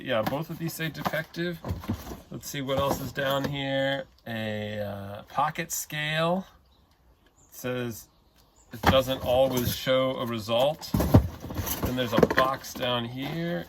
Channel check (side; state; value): both; identical; correlation 1.00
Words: both of these say defective. Let's see what else is down here. A pocket scale. It says it doesn't always show a result. Then there's a box down here.